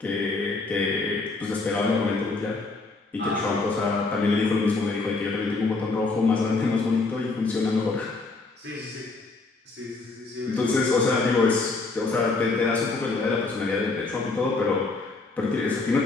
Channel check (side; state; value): right; quieter; 3.7 dB